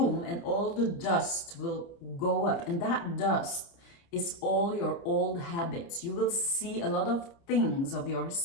and all the dust will go up, and that dust is all your old habits. You will see a lot of things of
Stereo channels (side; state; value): right; late; 29 ms